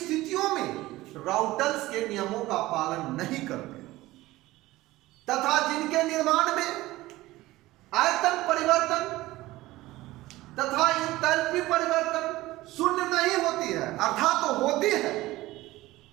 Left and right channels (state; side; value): quieter; left; 17.9 dB